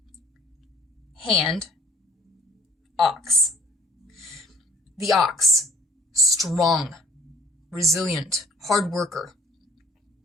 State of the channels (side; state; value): both; normal; correlation 0.53